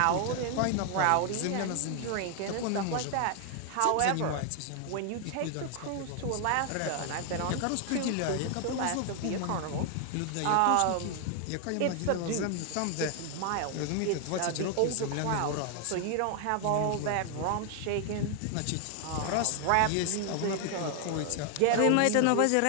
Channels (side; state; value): both; different; correlation 0.00